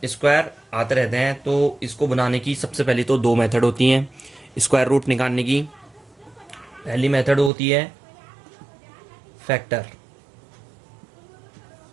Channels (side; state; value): left; drops out; at 7.5 s